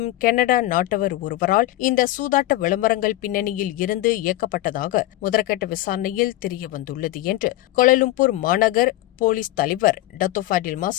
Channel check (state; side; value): quieter; right; 16.1 dB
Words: கனடா நாட்டவர் ஒருவரால் இந்த சூதாட்ட விளம்பரங்கள் பின்னணியில் இருந்து இயக்கப்பட்டதாக முதற்கட்ட விசாரணையில் தெரியவந்துள்ளது என்று கோலாலம்பூர் மாநகர் போலீஸ் தலைவர் டத்தோ ஃபாடில்